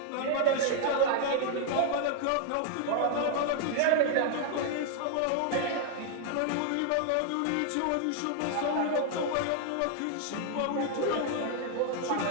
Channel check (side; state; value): both; different; correlation 0.00